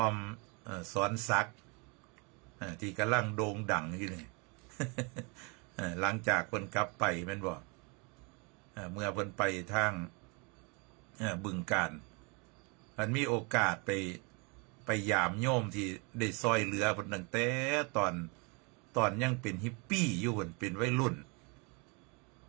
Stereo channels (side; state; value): left; quieter; 31.6 dB